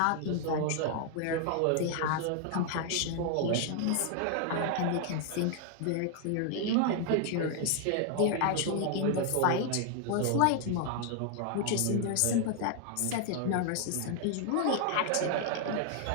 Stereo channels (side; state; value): both; different; correlation 0.00